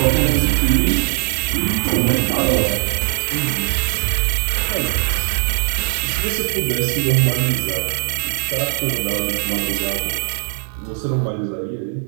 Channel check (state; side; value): silent; left; digital silence